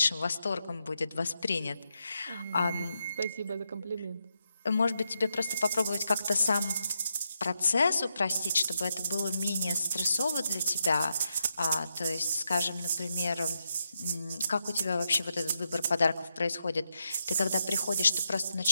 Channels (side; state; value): both; inverted; correlation -0.84